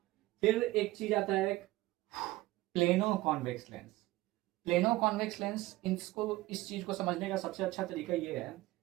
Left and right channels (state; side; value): quieter; left; 18.4 dB